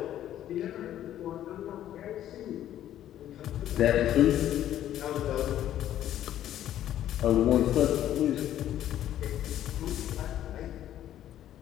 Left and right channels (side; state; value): right; quieter; 11.8 dB